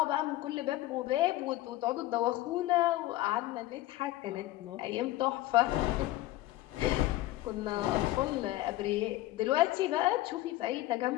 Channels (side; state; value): right; quieter; 16.4 dB